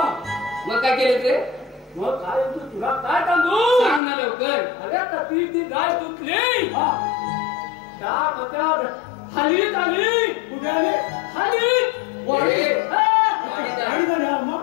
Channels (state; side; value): drops out; right; at 4.0 s